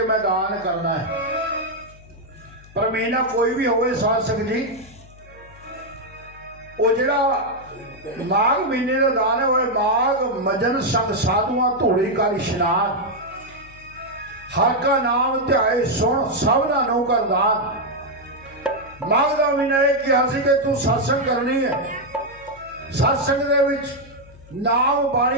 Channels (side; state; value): left; noise; hum, 22 dB below the sound